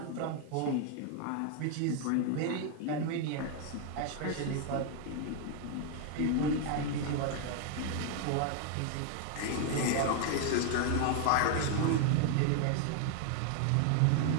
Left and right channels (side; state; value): both; different; correlation 0.00